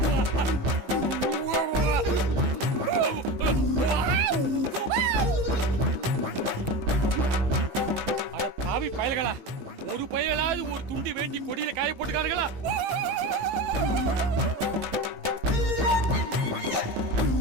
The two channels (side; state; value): left; late; 15 ms